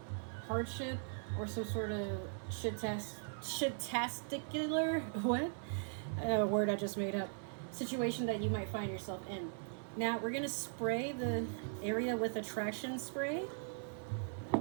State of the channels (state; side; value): silent; left; 51 dB below the other